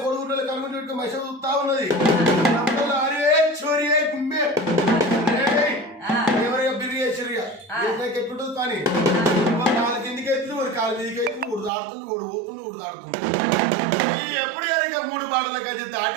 కొడుకుంటే కనుగొని పెట్టుకుని మనిషి చూస్తా ఉన్నది అరే చోరీ గుమ్మే ఎవరైనా బిర్రి వేసిరిగా ఎట్లుంటుంది పని కాలు కిందికి ఎత్తుంది వాడు కాలు మీదకి ఎత్తుంది ఊడు దాడుతుంది ఊడు పోతుంది ఊడు దాడుతుంది ఎప్పుడు కనుక 3 బాటల కలిసి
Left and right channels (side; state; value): left; drops out; at 11.7 s